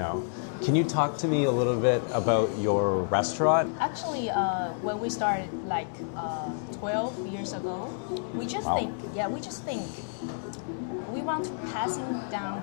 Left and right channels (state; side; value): silent; right; digital silence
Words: Can you talk to me a little bit about your restaurant? Actually, when we started like 12 years ago, we just think we want to passing down